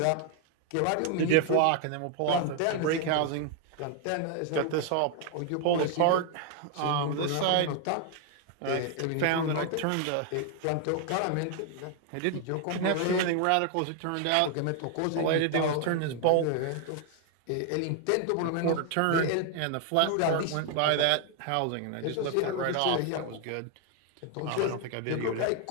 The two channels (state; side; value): different; both; correlation 0.00